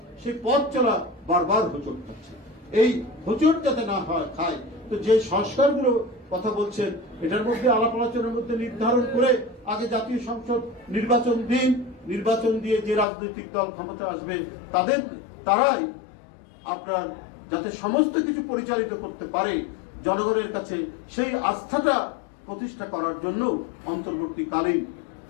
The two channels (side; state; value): right; drops out; at 13.1 s